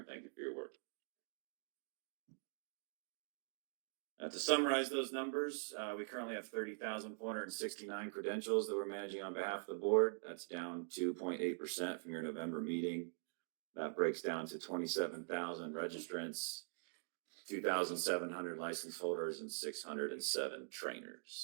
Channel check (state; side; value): silent; left; digital silence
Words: Thank you for your work. To summarize those numbers, we currently have 30,469 credentials that we're managing on behalf of the board. That's down 2.8% from your November meeting. That breaks down to 27,000 registrants, 2,700 license holders, and 607